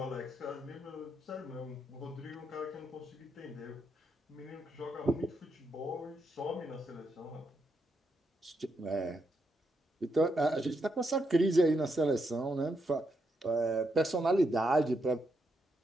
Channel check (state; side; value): normal; both; correlation 0.81